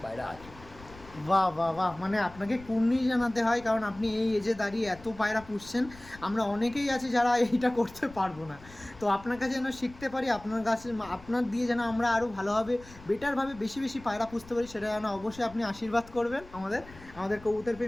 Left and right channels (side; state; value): left; noise; rumble, 20 dB below the sound